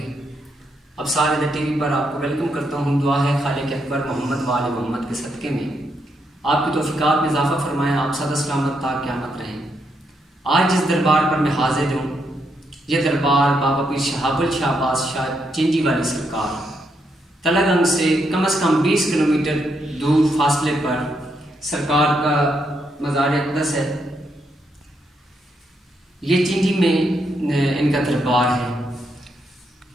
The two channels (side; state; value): both; normal; correlation 0.79